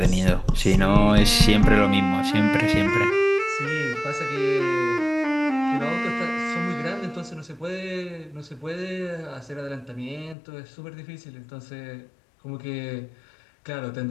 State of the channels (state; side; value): drops out; right; at 10.4 s